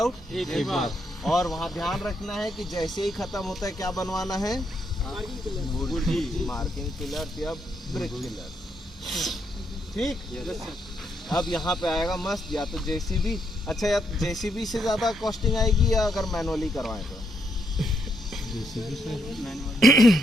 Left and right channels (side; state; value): both; normal; correlation 0.77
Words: एक बार। और वहाँ ध्यान रखना है कि जैसे ही खत्म होता है क्या बनवाना है? मार्किंग पिलर या ब्रिक पिलर। ठीक। अब यहाँ पे आएगा मस्त, या तो जेसीबी, अच्छा या जेसीबी से ज़्यादा कॉस्टिंग आएगी या अगर मैनुअली करवाएं तो?